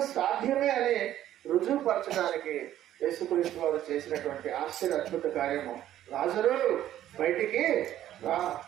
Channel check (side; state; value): left; quieter; 12.3 dB